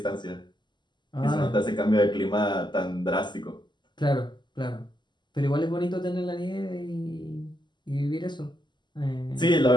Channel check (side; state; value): right; late; 0.21 ms